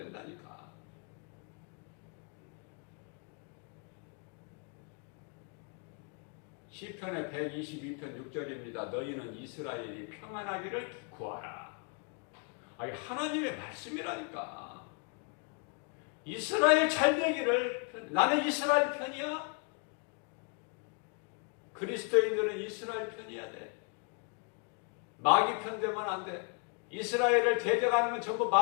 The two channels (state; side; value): quieter; right; 38.8 dB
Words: 시편의 122편 6절입니다. 너희는 이스라엘이 평안하기를 구하라. 아니 하나님의 말씀이라니까. 이스라엘 잘 되기를. 나는 이스라엘 편이야. 그리스도인들은 이스라엘 편이야 돼. 마귀 편 되면 안 돼. 이스라엘을 대적하는 건 전부